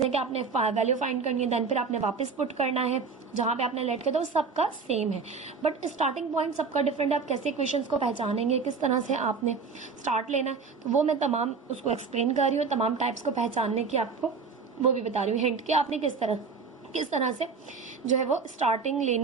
हैं कि आपने वैल्यू फाइंड करनी है, देन फिर आपने वापस पुट करना है जहाँ पे आपने लेट किया था, वो सबका सेम है, बट स्टार्टिंग पॉइंट सबका डिफरेंट है। आप कैसे इक्वेशंस को पहचानेंगे, किस तरह से आपने स्टार्ट लेना है, तो वो मैं तमाम उसको एक्सप्लेन कर रही हूँ। तमाम टाइप्स को पहचानने की आपको वो भी बता रही हूँ, हिंट कि आपने किस तरह से जो है वो स्टार्टिंग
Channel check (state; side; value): quieter; left; 5.0 dB